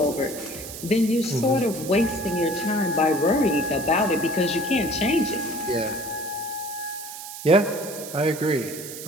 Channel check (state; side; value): noise; right; hiss, 11 dB below the sound